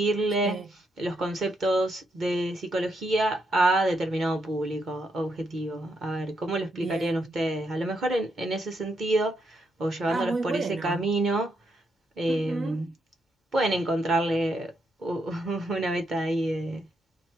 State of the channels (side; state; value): both; normal; correlation 0.79